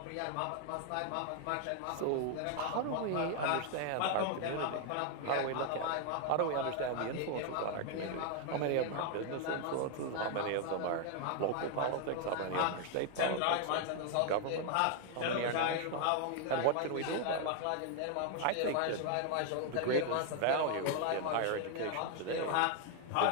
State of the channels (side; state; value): both; different; correlation 0.00